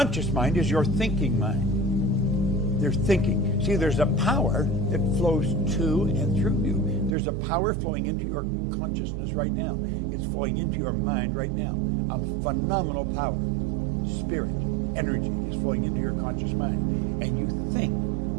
mind is your thinking mind. They're thinking. See, there's a power that flows to and through you. There's a power flowing into your consciousness right now. It's flowing into your mind right now. A phenomenal power. Spirit, energy is flowing into your conscious mind. And you think.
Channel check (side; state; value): left; drops out; at 7.1 s